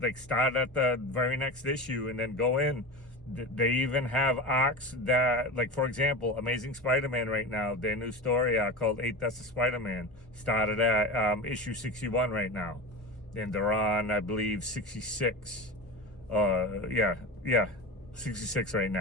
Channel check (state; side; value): normal; both; correlation 0.27